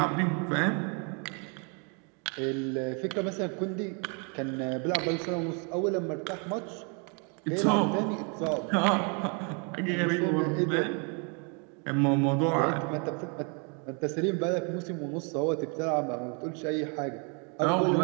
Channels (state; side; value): quieter; left; 36.1 dB